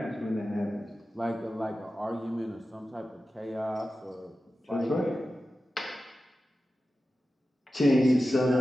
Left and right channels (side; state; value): both; normal; correlation 0.93